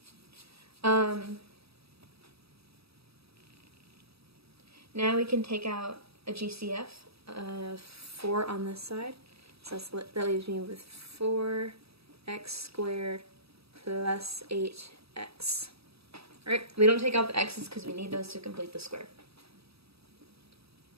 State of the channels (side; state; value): left; late; 0.77 ms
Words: Now we can take out a GCF of 4 on this side. So that leaves me with 4x squared plus 8x. Alright, we don't take out the x's because we need those to complete the square.